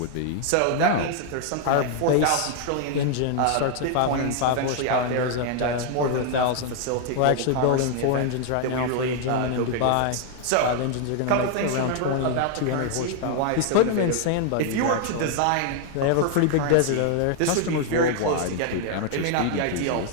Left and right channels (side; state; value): both; different; correlation 0.00